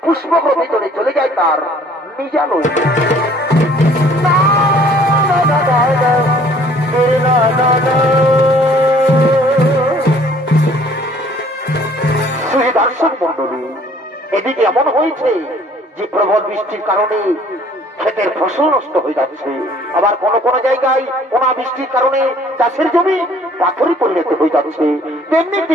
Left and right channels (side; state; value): both; normal; correlation 0.56